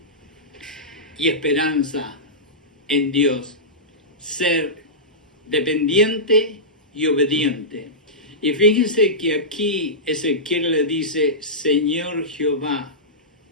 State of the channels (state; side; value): normal; both; correlation -0.16